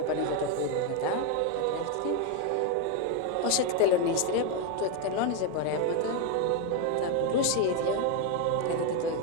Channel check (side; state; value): both; different; correlation 0.01